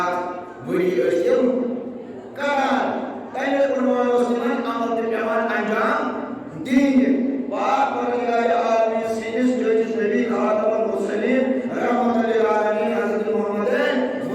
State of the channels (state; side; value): identical; both; correlation 1.00